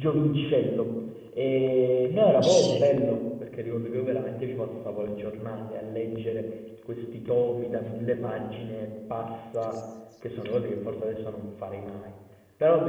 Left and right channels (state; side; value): identical; both; correlation 1.00